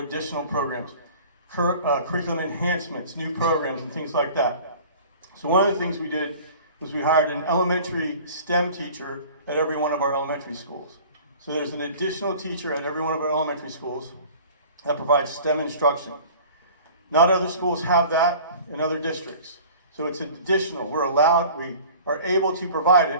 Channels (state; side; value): inverted; both; correlation -0.45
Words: programs, curriculum enhancements, new programs, and things like that. So one of the things we did was we hired an elementary STEM teacher at every one of our elementary schools. So there's an additional teacher at every one of our elementary schools that provides STEM instruction. Not other schools have that in other districts. So it's additional. We're allowed, we are able to provide